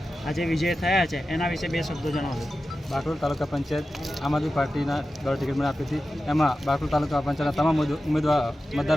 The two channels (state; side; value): normal; both; correlation 0.93